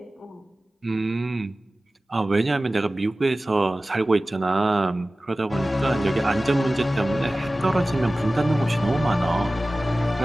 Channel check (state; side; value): normal; both; correlation 0.97